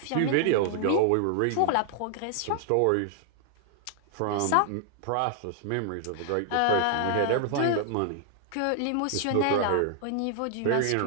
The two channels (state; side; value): different; both; correlation 0.00